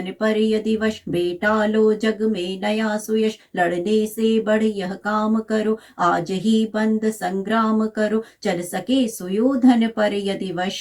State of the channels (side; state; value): both; identical; correlation 1.00